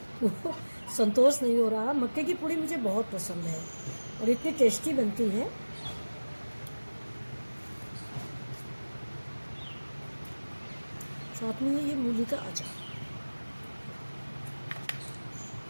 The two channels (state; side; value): inverted; both; correlation -1.00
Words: हूँ। संतोष नहीं हो रहा। मक्के की पूड़ी मुझे बहुत पसंद है और इतनी टेस्टी बनती है। साथ में ये मूली का अचार।